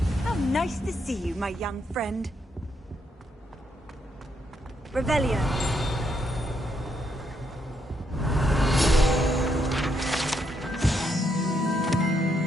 How nice to see you, my young friend. Revelio.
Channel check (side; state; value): both; normal; correlation 0.77